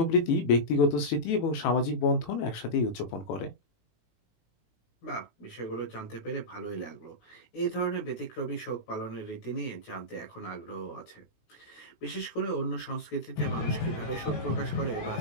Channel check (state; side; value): late; right; 18 ms